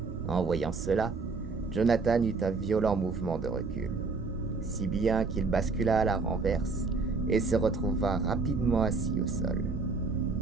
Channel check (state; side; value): quieter; left; 4.2 dB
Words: En voyant cela, Jonathan eut un violent mouvement de recul, si bien qu'il bascula à la renverse et se retrouva rapidement assis au sol.